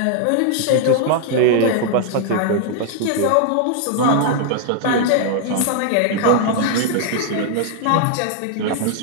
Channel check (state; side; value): different; both; correlation 0.00